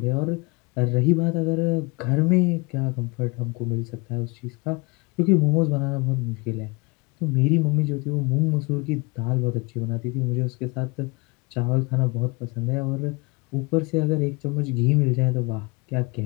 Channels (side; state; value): right; quieter; 27.4 dB